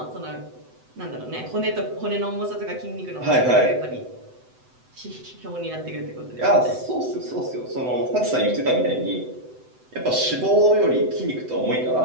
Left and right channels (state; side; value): late; left; 7.9 ms